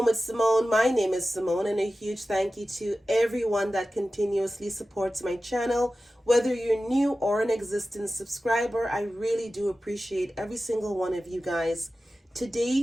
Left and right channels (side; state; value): both; normal; correlation 0.94